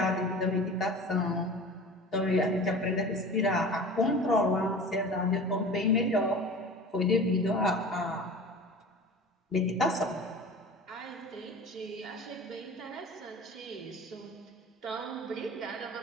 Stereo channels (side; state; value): both; normal; correlation 0.37